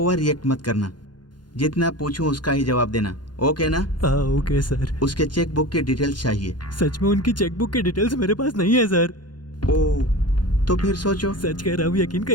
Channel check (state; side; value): late; right; 0.71 ms